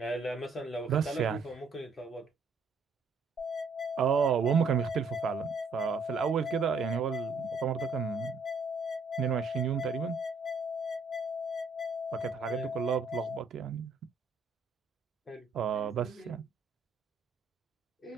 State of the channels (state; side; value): quieter; left; 4.1 dB